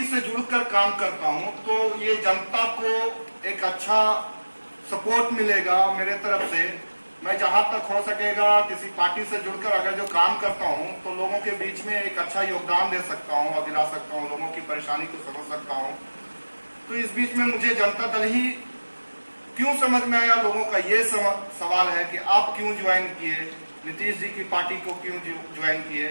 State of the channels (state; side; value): inverted; both; correlation -1.00